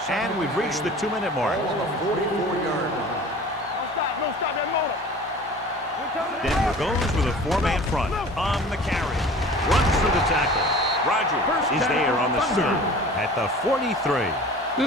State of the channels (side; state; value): both; normal; correlation 0.42